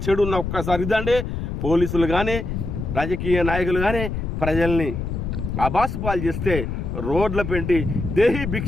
చెడు ఉన్న ఒక్కసారి ఇదండి. పోలీసులు కానీ రాజకీయ నాయకులు కానీ ప్రజల్ని అబాసు పాలు చేస్తే రోడ్ల పెంటి దేహి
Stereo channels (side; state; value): left; noise; rumble, 4 dB below the sound